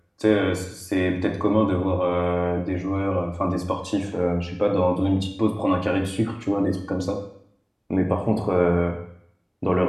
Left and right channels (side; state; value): both; identical; correlation 1.00